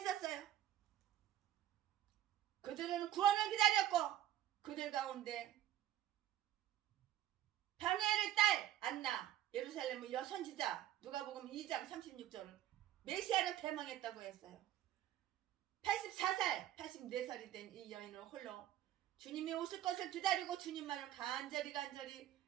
그들은 구원을 기다렸고 그들 가운데 변호엘의 딸 안나 예루살렘의 여선지자 누가복음 2장 36절은 메시아를 대망했다고 했어요. 84살이 된 이 여인은 홀로 주님이 오실 것을 기다리고 주님만을 간절히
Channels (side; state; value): left; quieter; 12.4 dB